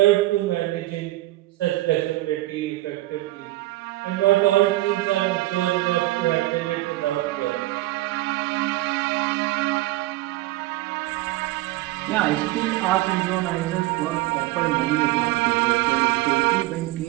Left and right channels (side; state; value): left; quieter; 17.9 dB